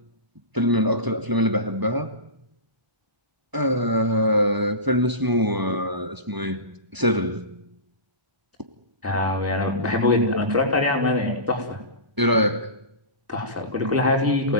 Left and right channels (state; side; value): late; left; 1.0 ms